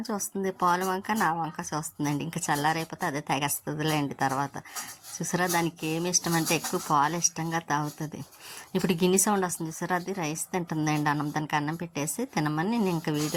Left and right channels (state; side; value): identical; both; correlation 1.00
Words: చూస్తుంది, పాలు వంక నా వంక చూస్తుందండి. ఇంకా చల్లారైపోతే అదే తాగేస్తుందిలేండి తర్వాత. చూసారా దానికి ఏమి ఇష్టం అంటే ఎక్కువ పాలు ఇష్టంగా తాగుతుంది. ఇప్పుడు గిన్నె సౌండ్ వస్తుంది చూసారా, అది రైస్ తింటుందండి. దానికి అన్నం పెట్టేసి తినమని నేను ఇంకా